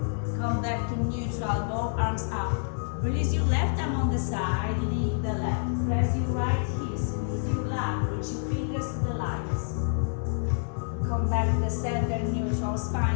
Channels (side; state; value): right; silent; digital silence